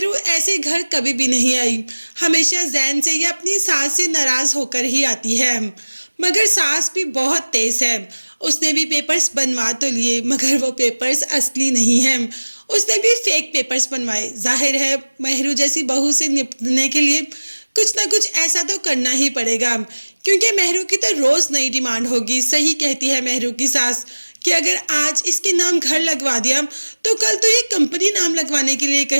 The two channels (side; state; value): both; inverted; correlation -1.00